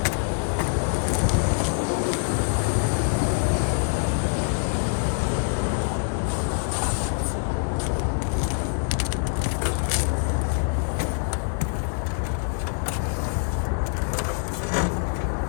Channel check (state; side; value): silent; right; 62 dB below the other